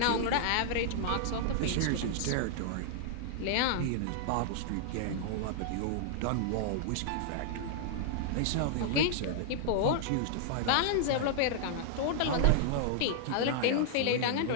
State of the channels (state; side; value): different; both; correlation -0.01